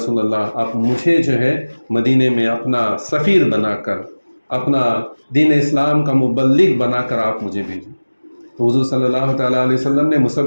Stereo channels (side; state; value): both; inverted; correlation -1.00